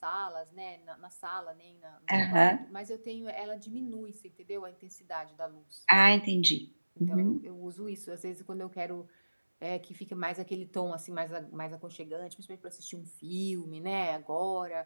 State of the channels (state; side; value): inverted; both; correlation -1.00